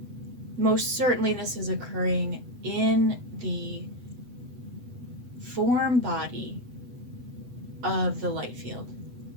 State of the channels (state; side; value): late; left; 8.0 ms